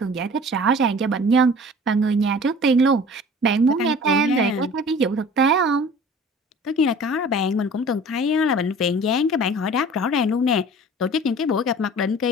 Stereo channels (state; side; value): normal; both; correlation 0.45